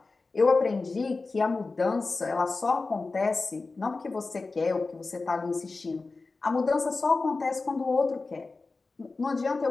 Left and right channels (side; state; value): right; quieter; 3.8 dB